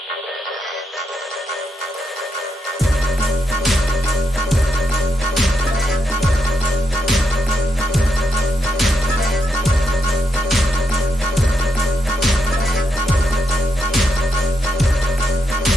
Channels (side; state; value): both; normal; correlation 0.81